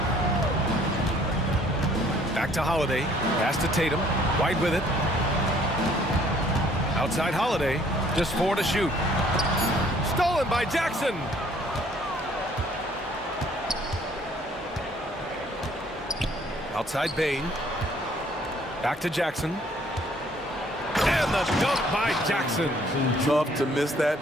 Back to Holiday. Pass to Tatum. White with it. Outside Holiday. Just 4 to shoot. Stolen by Jackson. Outside Bain. Back to Jackson. And the dunk by Jackson. Tough to miss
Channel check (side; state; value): both; normal; correlation 0.60